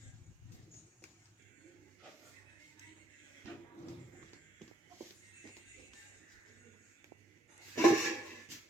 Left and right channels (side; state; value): both; normal; correlation 0.72